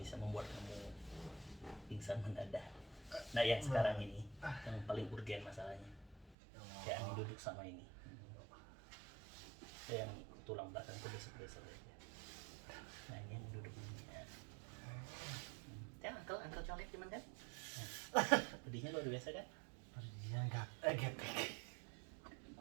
membuat kamu pingsan mendadak. Nah yang sekarang ini yang paling urgen masalahnya. Kayak Ani duduk sama ini. Yang tulang belakang itu besok-besok aja. Nah ini yang duduk ini ya. Ya Angkel colek cuman kan. Nah, pedihnya luar biasa kan? Dia enggak gepek.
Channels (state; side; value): drops out; left; at 6.4 s